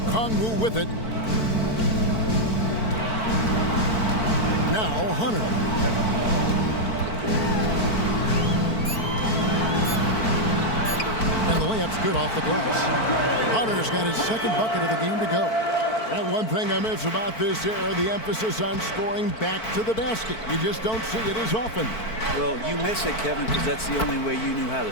with it. Now Hunter. And the layup's good off the glass. Hunter's got his second bucket of the game to go. And one thing I miss about this era, the emphasis on scoring back to the basket. You just don't see it as often. Well, you miss it, Kevin, because that's the only way you knew how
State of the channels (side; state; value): right; late; 4.5 ms